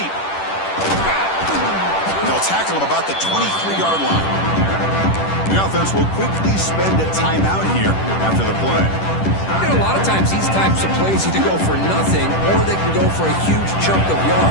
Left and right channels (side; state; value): right; late; 10 ms